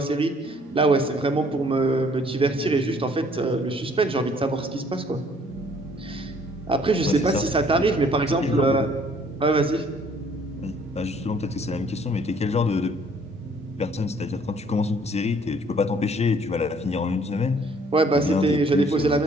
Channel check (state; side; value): normal; both; correlation 0.60